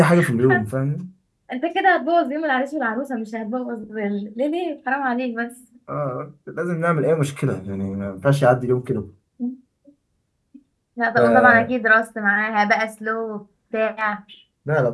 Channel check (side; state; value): both; identical; correlation 1.00